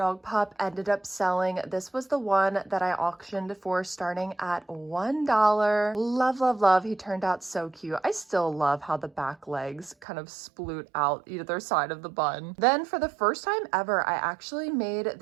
pup ended up selling. This was the one that I auctioned for starting at $1. Love, love, love. He turned out so cute. I still love how the back legs kind of sploot out either side of the bun. Then for the first time ever, I actually made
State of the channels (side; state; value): left; drops out; at 10.1 s